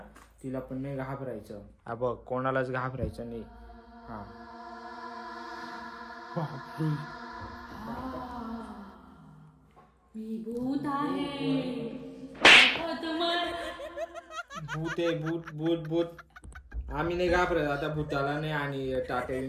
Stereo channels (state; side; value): identical; both; correlation 1.00